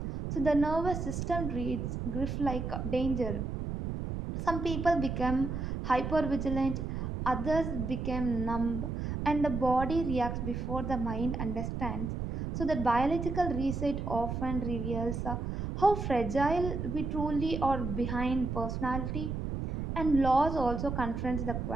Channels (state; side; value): noise; right; rumble, 4 dB below the sound